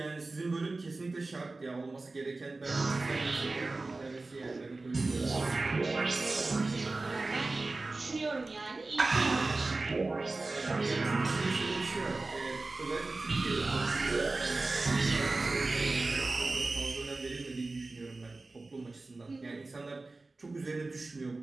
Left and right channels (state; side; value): quieter; left; 3.3 dB